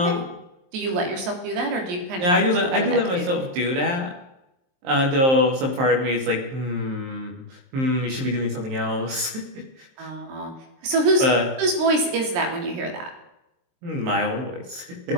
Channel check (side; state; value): left; late; 23 ms